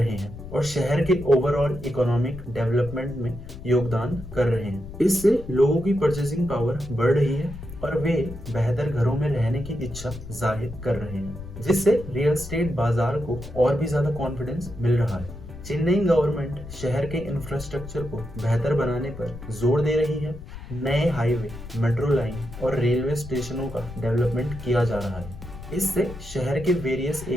हैं और शहर के ओवरऑल इकोनॉमिक डेवलपमेंट में योगदान कर रहे हैं। इससे लोगों की परचेसिंग पावर बढ़ रही है और वे बेहतर घरों में रहने की इच्छा जाहिर कर रहे हैं, जिससे रियल एस्टेट बाजार को और भी ज्यादा कॉन्फिडेंस मिल रहा है। चेन्नई गवर्नमेंट शहर के इंफ्रास्ट्रक्चर को बेहतर बनाने पर जोर दे रही है। नए हाईवे, मेट्रो लाइन और रेलवे स्टेशनों का डेवलपमेंट किया जा रहा है। इससे शहर के वेरियस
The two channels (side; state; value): left; noise; rumble, 12 dB below the sound